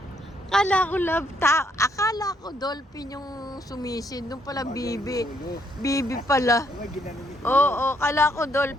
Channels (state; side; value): normal; both; correlation 0.71